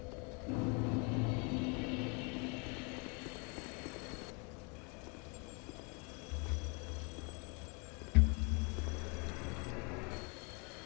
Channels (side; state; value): right; quieter; 33.1 dB